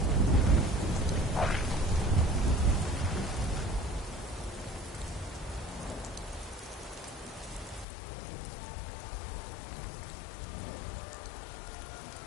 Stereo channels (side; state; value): right; drops out; at 7.9 s